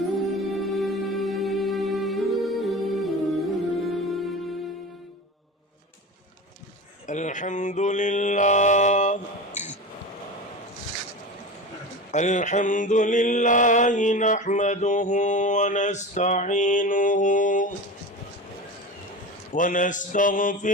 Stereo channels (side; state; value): both; normal; correlation 0.29